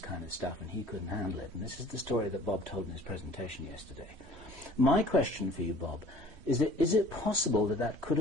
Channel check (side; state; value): left; late; 3.1 ms